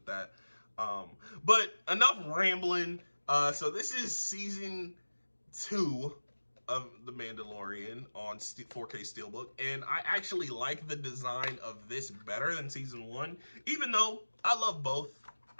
that. But enough rambling. So this is season 2 of The Mandalorian on 4K Steelbook, and I actually like the design of this better than season 1, even though I love both.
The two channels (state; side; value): inverted; both; correlation -1.00